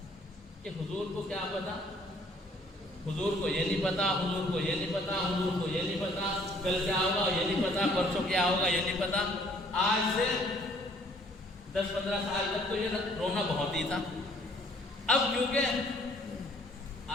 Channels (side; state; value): both; normal; correlation 0.60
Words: کہ حضور کو کیا پتا, حضور کو یہ نہیں پتا, حضور کو یہ نہیں پتا, حضور کو یہ نہیں پتا, کل کیا ہوگا یہ نہیں پتا, پرسوں کیا ہوگا یہ نہیں پتا. آج سے 10-15 سال تک تو یہ رونا بہت ہی تھا. اب کیونکہ